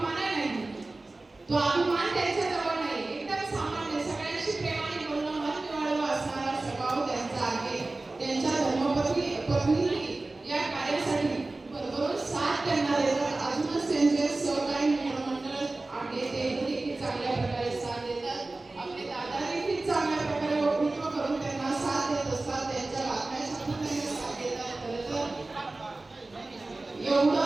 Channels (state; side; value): quieter; left; 3.1 dB